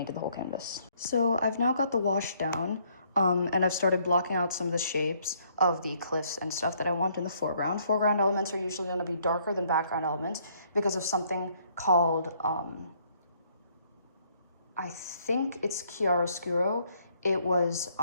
the whole canvas. So I've now got the wash down, and I've started blocking out some of the shapes of the cliffs and stuff that I want in the foreground. Foreground elements are usually going to be darker than background elements because of something called, I think it's chiaroscuro. It was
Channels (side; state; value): both; inverted; correlation -0.67